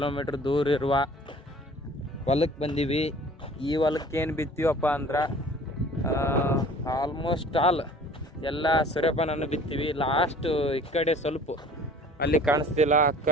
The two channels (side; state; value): both; normal; correlation 0.48